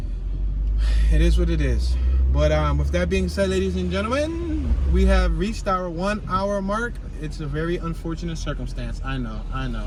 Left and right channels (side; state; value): both; identical; correlation 1.00